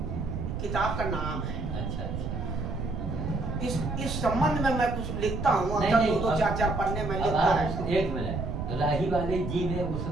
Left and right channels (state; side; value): noise; right; rumble, 4 dB below the sound